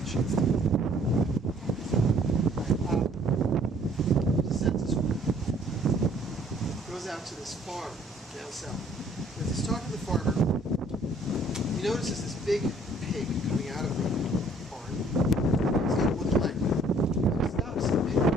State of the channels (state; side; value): normal; both; correlation 0.59